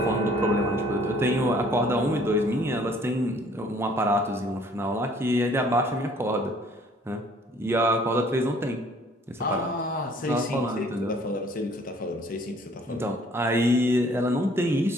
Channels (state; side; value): normal; both; correlation 0.58